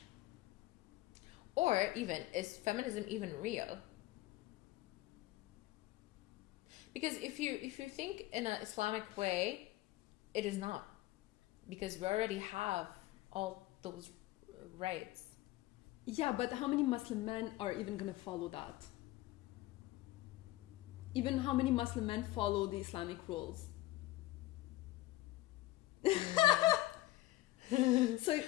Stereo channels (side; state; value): right; quieter; 17.0 dB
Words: or even, is feminism even real? Because if you think in an Islamic way, it is not, because we already have all those rights. Yeah, but how many Muslim men are even gonna follow that? Even how many Muslim men follow the Islamic rules? So